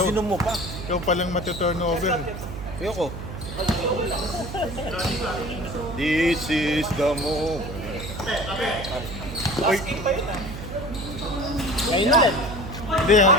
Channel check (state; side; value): noise; right; hum, 9 dB below the sound